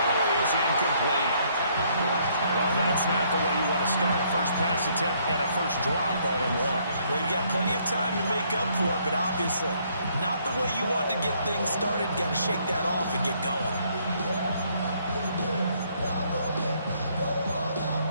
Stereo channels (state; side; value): inverted; both; correlation -0.67